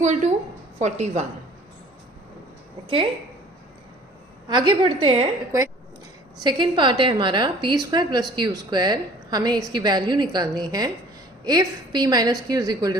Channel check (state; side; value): normal; both; correlation 0.51